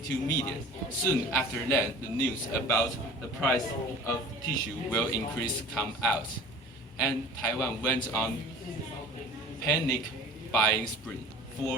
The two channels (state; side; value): normal; both; correlation 0.42